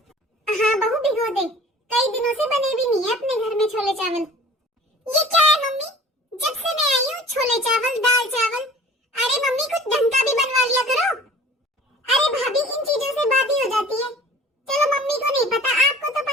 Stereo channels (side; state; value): both; normal; correlation 0.46